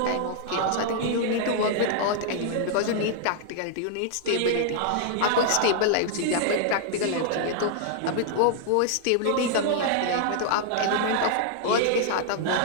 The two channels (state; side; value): different; both; correlation -0.01